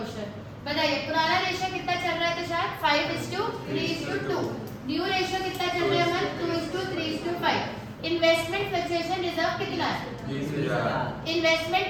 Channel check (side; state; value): both; identical; correlation 1.00